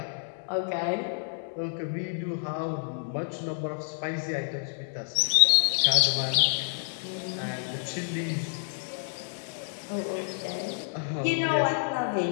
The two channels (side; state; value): right; silent; digital silence